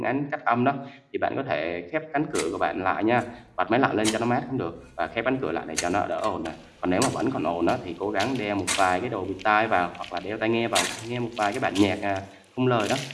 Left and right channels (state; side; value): identical; both; correlation 1.00